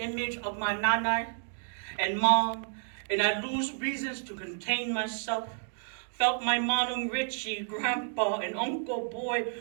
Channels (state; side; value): silent; left; digital silence